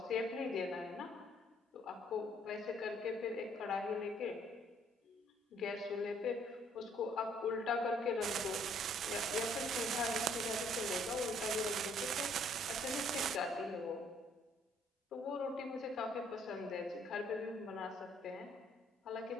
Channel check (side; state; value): both; normal; correlation 0.64